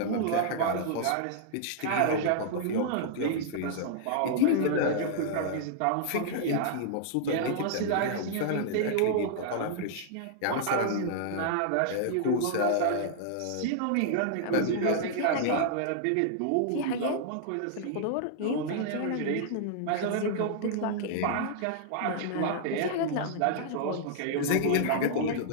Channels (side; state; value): both; different; correlation -0.01